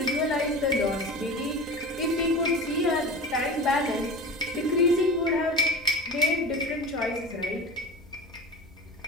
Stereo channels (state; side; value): normal; both; correlation 0.33